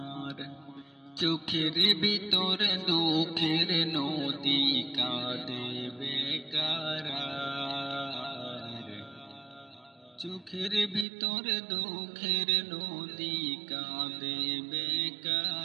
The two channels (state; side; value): drops out; left; at 11.1 s